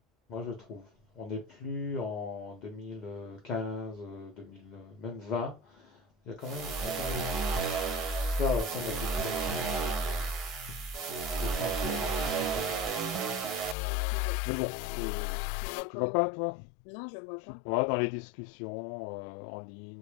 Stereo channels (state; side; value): drops out; right; at 13.8 s